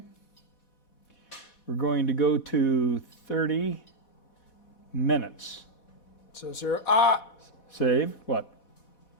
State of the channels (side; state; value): right; late; 4.1 ms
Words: we're going to go to 30 minutes. So Save. What?